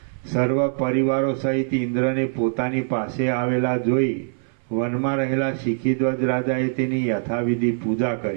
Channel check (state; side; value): silent; left; 59 dB below the other